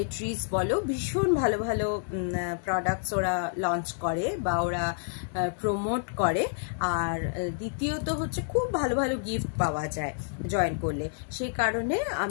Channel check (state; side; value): silent; right; digital silence